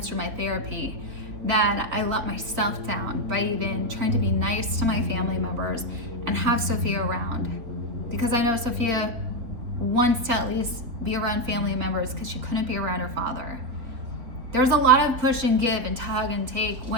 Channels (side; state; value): left; late; 3.8 ms